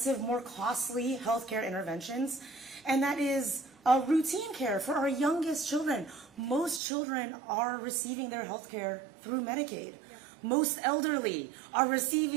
more costly healthcare interventions. And that is routine care for our youngest children. Most children are receiving their health care through Medicaid. Most elderly are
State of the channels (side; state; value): left; drops out; at 6.8 s